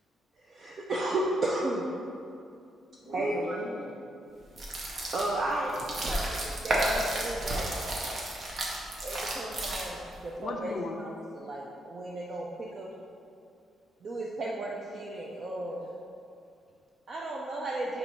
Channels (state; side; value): normal; both; correlation 0.77